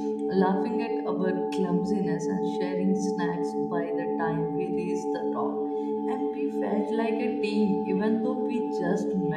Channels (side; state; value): both; identical; correlation 1.00